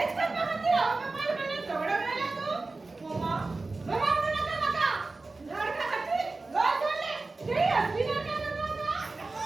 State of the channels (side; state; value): left; quieter; 3.5 dB